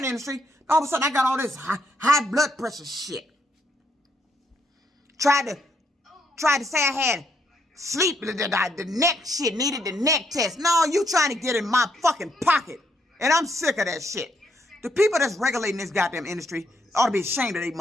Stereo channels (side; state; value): both; normal; correlation 0.74